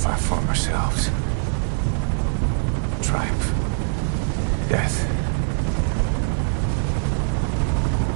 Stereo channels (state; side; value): silent; left; 59 dB below the other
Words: our former selves. Triumph. Death.